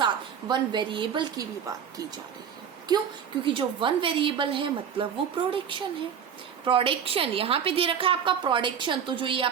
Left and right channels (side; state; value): left; quieter; 7.9 dB